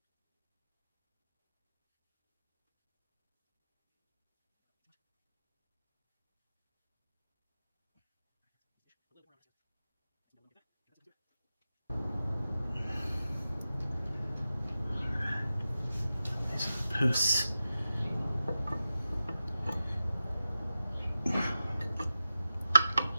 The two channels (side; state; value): both; inverted; correlation -0.92